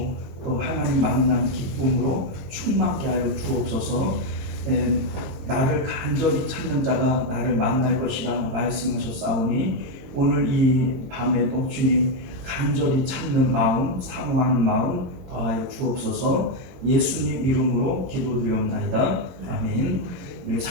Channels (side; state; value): left; late; 22 ms